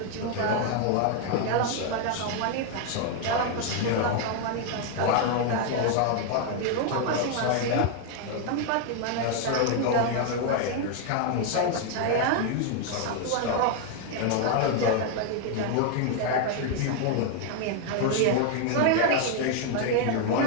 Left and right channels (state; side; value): different; both; correlation 0.00